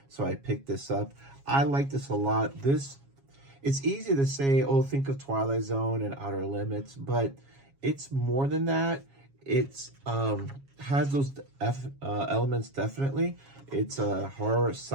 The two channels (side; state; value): left; late; 7.3 ms